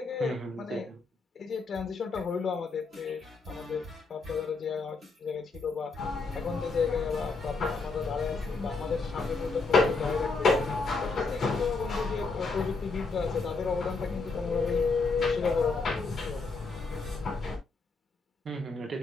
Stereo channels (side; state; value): right; quieter; 4.0 dB